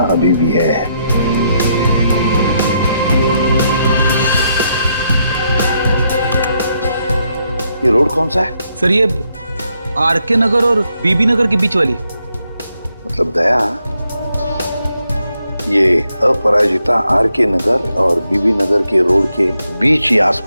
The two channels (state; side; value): inverted; both; correlation -0.78